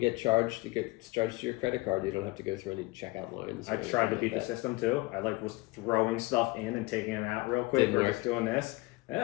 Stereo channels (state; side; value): quieter; right; 22.9 dB